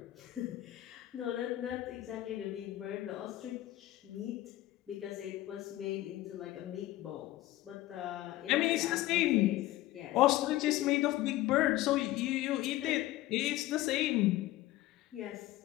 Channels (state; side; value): quieter; right; 16.1 dB